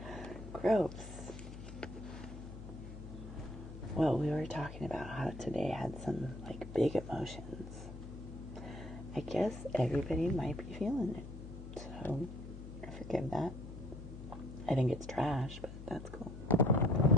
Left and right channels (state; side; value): noise; left; hum, 11 dB below the sound